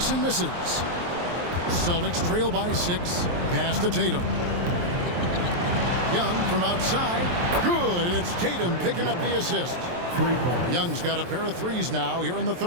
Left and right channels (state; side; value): late; left; 23 ms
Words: misses. Celtics trail by 6. Pass to Tatum. Young from outside. Good, and it's Tatum picking up the assist. Young's got a pair of threes now here in the